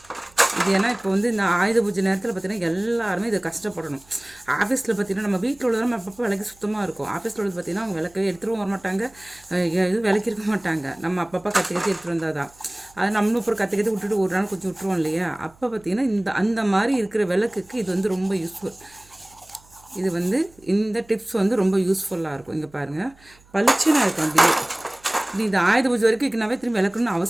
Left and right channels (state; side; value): noise; right; hum, 28 dB below the sound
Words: இது ஏன்னா இப்போ வந்து இந்த ஆயுத பூஜை நேரத்தில் பார்த்திங்கன்னா எல்லாருமே இதை கஷ்டப்படணும். ஆஃபீஸில் பார்த்திங்கன்னா நம்ம வீட்டில் உள்ளதும் நம்ம அப்பப்போ விளக்கி சுத்தமாக இருக்கும். ஆஃபீஸில் உள்ளது பார்த்திங்கன்னா அவங்க விளக்கவே எடுத்துகிட்டு வர மாட்டாங்க, எதுவும் விளக்கிருக்க மாட்டாங்க. நம்ம அப்பப்போ கற்று எடுத்துகிட்டு வந்தால் தான் அது நம்மளும் அப்புறம் கற்று விட்டுட்டு ஒரு நாள் கொஞ்சம் விட்டுருவோம் இல்லையா. அப்போ பார்த்திங்கன்னா அந்த மாதிரி இருக்கிற விளக்குக்கு இது வந்து ரொம்ப யூஸ்ஃபுல். இது வந்து இந்த டிப்ஸ் வந்து ரொம்ப யூஸ்ஃபுல்லாக இருக்கும். இங்கே பாருங்கள், பளிச்சுன்னு இருக்கும். அப்படியே இது ஆயுத பூஜை வரைக்கும் வைக்கனாவே திரும்பி விளக்கணும்னு